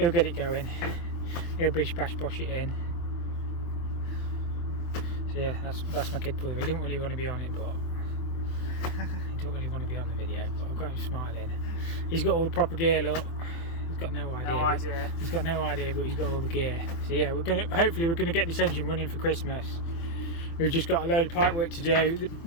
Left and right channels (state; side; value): late; right; 24 ms